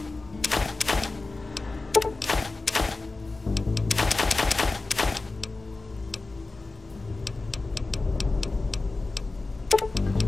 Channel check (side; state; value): right; quieter; 3.5 dB